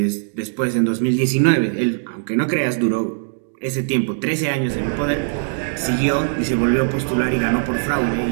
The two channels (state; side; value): silent; left; digital silence